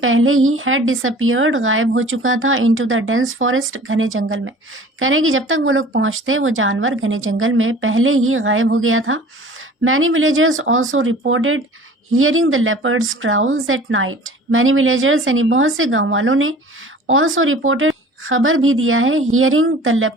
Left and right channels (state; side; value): normal; both; correlation 0.45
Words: पहले ही had disappeared गायब हो चुका था, into the dense forest घने जंगल में, कह रहे कि जब तक वो लोग पहुंचते वो जानवर घने जंगल में पहले ही गायब हो गया था। many villagers also reported hearing the leopards growls at night। many villagers यानी बहुत से गांव वालों ने also reported खबर भी दिया है hearing the